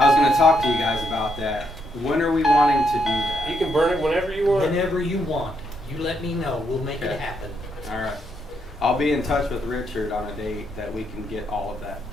was going to talk to you guys about that. When are we wanting to do that? You can burn it whenever you want. Whenever you want, you let me know, we'll make Okay. it happen. All right. I'll be in touch with Richard on a date that we can get all of that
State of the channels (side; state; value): both; normal; correlation 0.77